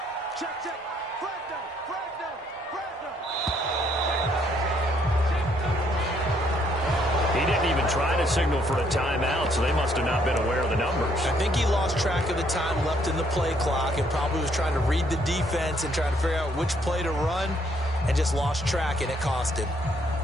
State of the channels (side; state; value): both; normal; correlation 0.69